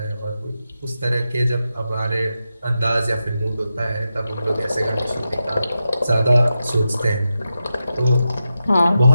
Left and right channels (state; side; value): inverted; both; correlation -0.89